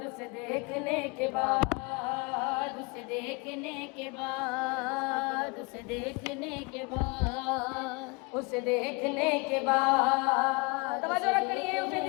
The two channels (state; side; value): quieter; right; 29.5 dB